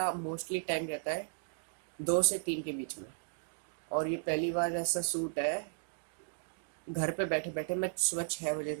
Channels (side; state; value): left; silent; digital silence